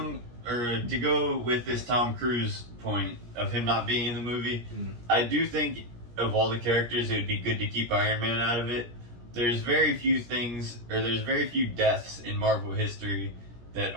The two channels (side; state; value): left; late; 17 ms